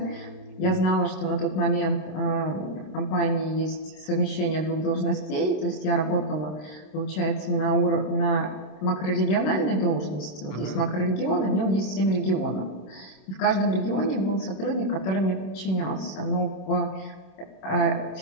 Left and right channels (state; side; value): late; right; 26 ms